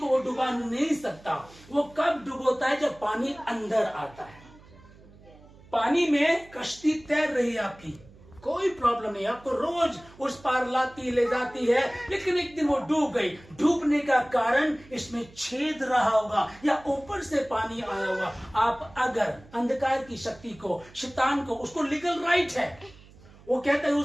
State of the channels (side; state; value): right; noise; hum, 23 dB below the sound